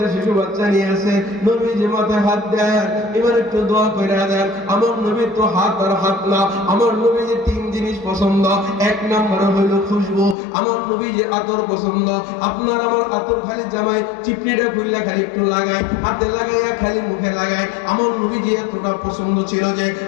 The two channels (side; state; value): right; drops out; at 10.4 s